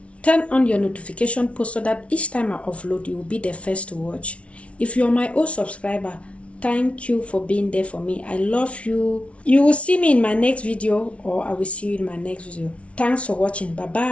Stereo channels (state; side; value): late; right; 0.062 ms